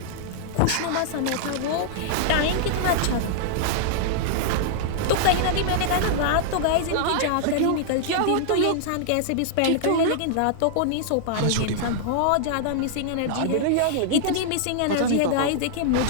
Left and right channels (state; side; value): different; both; correlation -0.01